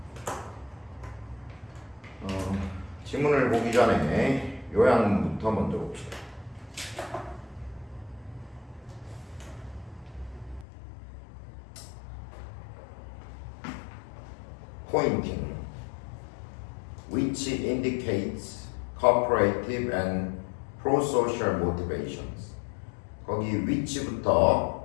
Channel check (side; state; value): right; drops out; at 10.7 s